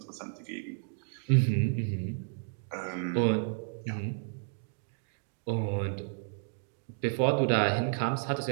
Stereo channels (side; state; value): left; silent; digital silence